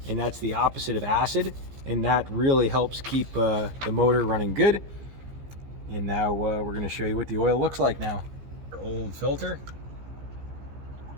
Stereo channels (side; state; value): left; late; 15 ms